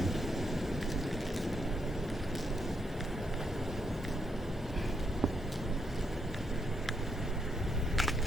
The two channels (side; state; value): both; normal; correlation 0.78